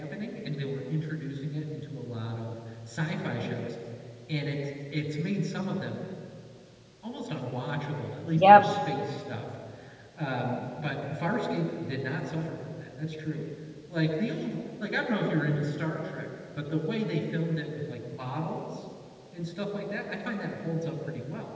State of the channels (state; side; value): identical; both; correlation 1.00